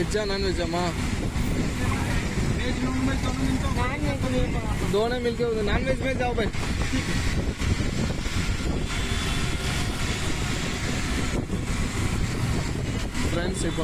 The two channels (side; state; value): both; identical; correlation 1.00